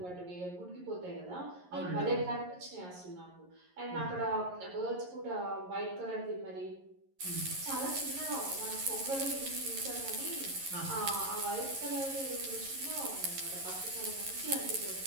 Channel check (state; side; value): late; left; 11 ms